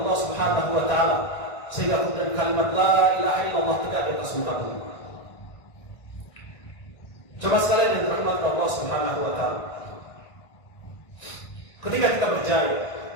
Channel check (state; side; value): late; right; 1.6 ms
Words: Subhanahu wa taala, sehingga kemudian kalimat la ilaha illallah tegak di atas muka bumi. Coba sekalian yang dirahmati Allah Subhanahu wa taala, ketika kita berjaya,